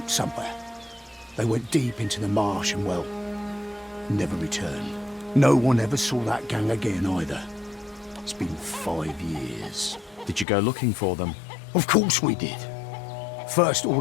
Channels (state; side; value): drops out; right; at 10.5 s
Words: somewhere. They went deep into the marsh and, well, never returned. No one ever saw that gang again either. It's been 5 years. Did you go looking for them? Of course we did. First